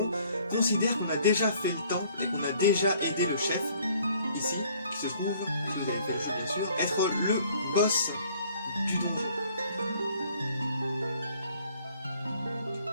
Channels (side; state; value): both; inverted; correlation -0.59